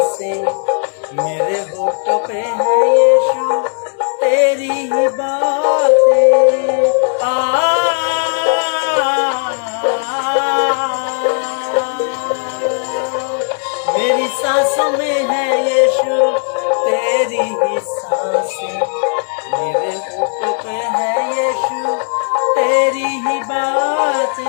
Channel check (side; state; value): right; silent; 64 dB below the other